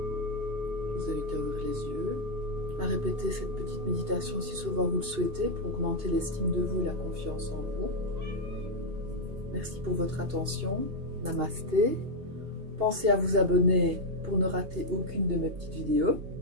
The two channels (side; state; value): left; late; 2.8 ms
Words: Je vous invite à ouvrir les yeux, à répéter cette petite méditation si souvent vous le souhaitez pour augmenter l'estime de vous et la confiance en vous. Merci pour votre attention. Namasté. Pensez à vous abonner pour ne rater aucune de mes petites vidéos.